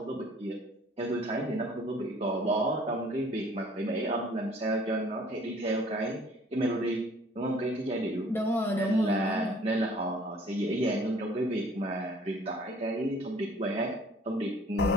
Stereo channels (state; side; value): normal; both; correlation 0.54